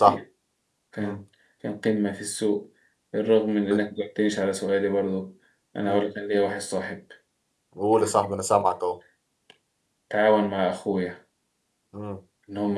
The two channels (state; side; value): identical; both; correlation 1.00